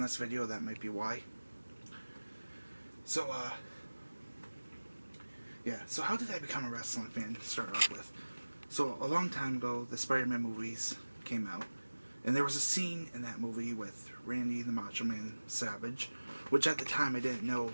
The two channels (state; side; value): inverted; both; correlation -1.00